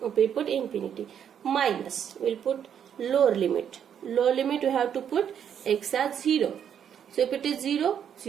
We put infinity. Minus, we'll put lower limit. Lower limit we have to put x as 0. So if it is 0,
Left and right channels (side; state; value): left; quieter; 8.6 dB